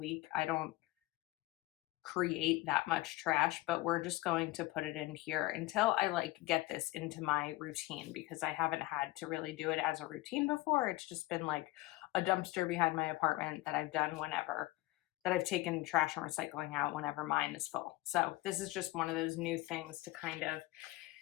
I don't create that much trash, but we're just going to put it in here until I like get this into my routine because I haven't had to really do it as a routine before. It's just been like a dumpster behind my apartment that I've done whenever that I've taken trash and recycling out whenever mine is full. So this is just one of those new things to kind of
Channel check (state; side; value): quieter; right; 18.7 dB